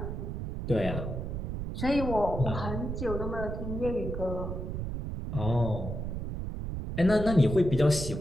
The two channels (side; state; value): right; noise; rumble, 4 dB below the sound